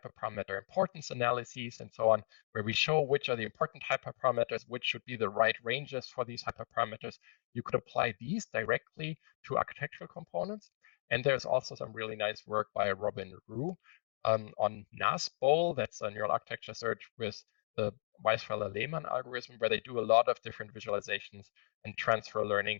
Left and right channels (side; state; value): right; silent; digital silence